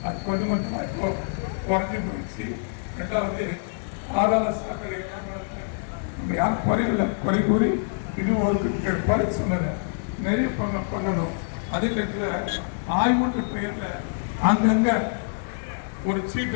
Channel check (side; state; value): right; silent; 61 dB below the other